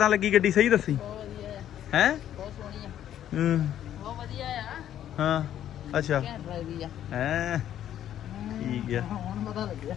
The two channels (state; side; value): quieter; right; 11.0 dB